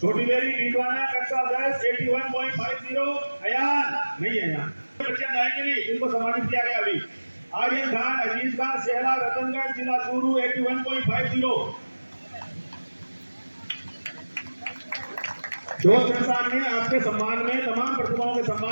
छोटी बेरी डीडवाना कक्षा 10 81.50। अयान नहीं है, यहाँ बच्चे आएंगे नहीं, इनको सम्मानित किया गया अभी। आर्यन खान अजीज खान सेहला रतनगढ़ जिला चूरू 81.50। दोस्त संस्थान ने आपके सम्मान में तमाम प्रतिभाओं के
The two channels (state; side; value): inverted; both; correlation -1.00